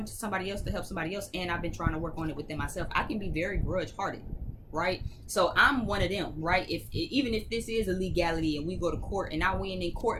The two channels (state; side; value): identical; both; correlation 1.00